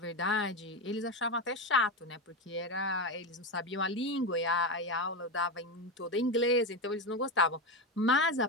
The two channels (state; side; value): normal; both; correlation 0.15